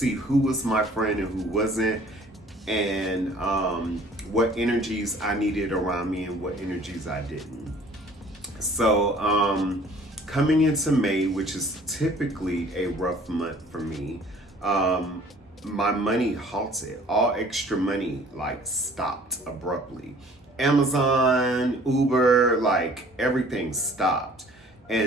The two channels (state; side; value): normal; both; correlation 0.53